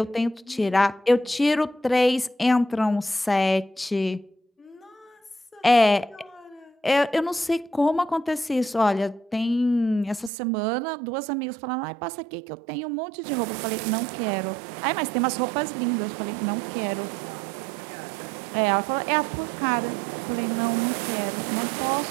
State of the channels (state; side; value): drops out; left; at 10.3 s